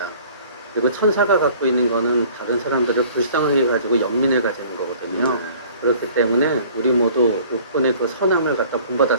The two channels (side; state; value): both; inverted; correlation -0.51